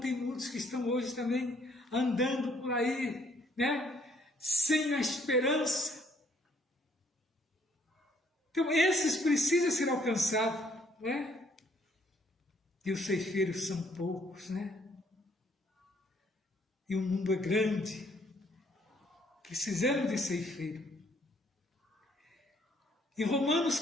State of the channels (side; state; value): both; normal; correlation 0.65